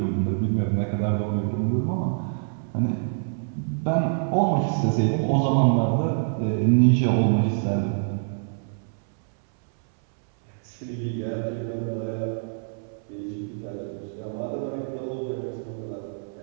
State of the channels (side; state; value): left; silent; 61 dB below the other